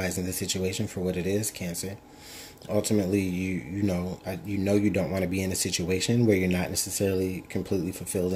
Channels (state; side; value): identical; both; correlation 1.00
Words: the situation for what it is, Cancer. Ultimately, you know you don't want to be in a situation where you're not necessarily completely fulfilled